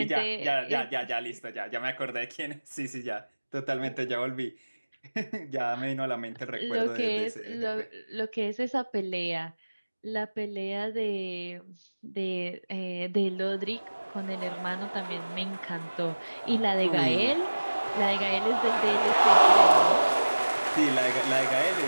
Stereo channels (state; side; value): inverted; both; correlation -1.00